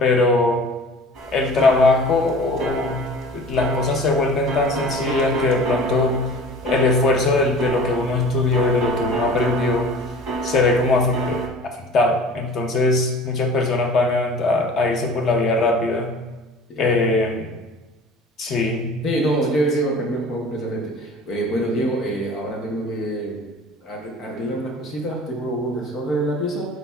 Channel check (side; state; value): both; normal; correlation 0.43